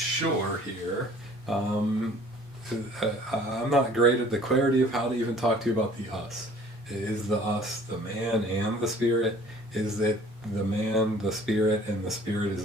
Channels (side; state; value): both; normal; correlation 0.52